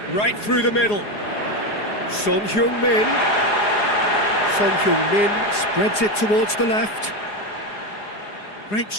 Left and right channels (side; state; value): right; late; 4.8 ms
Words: right through the middle. Son Heung-min. Son Heung-min spreads it towards the left. Great